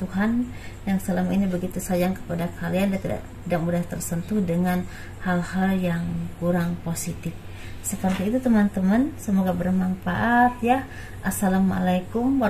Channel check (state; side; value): identical; both; correlation 1.00